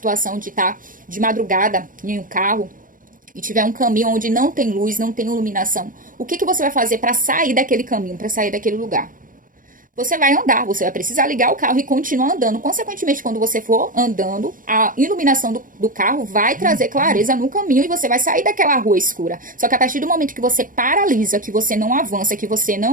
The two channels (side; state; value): left; late; 0.39 ms